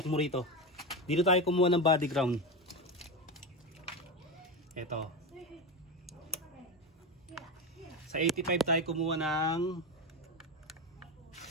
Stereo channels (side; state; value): both; normal; correlation 0.17